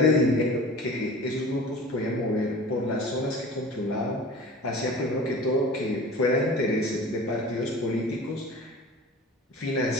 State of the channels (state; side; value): normal; both; correlation 0.38